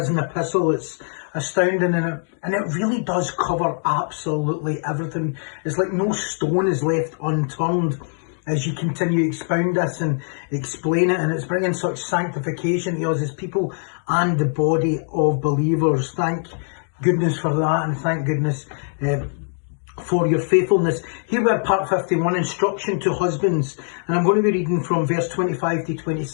epistle. It's astounding and it really does cover absolutely everything. It's like no stone is left unturned as you continue to expound this and explain it, and it's bringing such sanctification to us as people and the body of believers. Thank goodness for that, and thank goodness for your faithfulness. Here we are, part 51, instruction to husbands, and I'm going to be reading from verse 25 to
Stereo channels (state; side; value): silent; right; 64 dB below the other